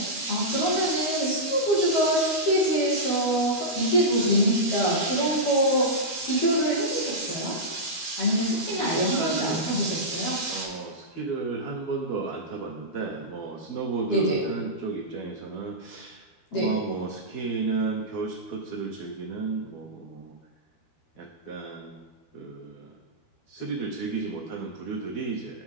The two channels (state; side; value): late; right; 12 ms